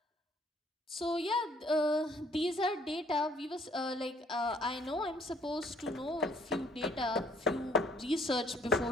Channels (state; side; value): normal; both; correlation 0.63